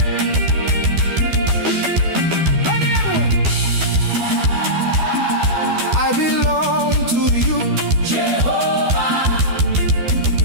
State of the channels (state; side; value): late; left; 12 ms